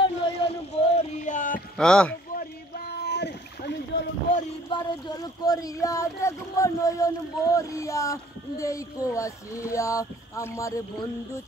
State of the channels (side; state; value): both; normal; correlation 0.56